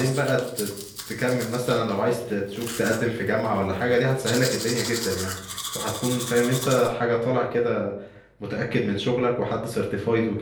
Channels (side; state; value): both; identical; correlation 1.00